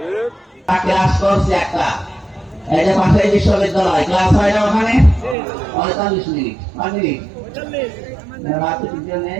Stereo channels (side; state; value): left; drops out; at 5.4 s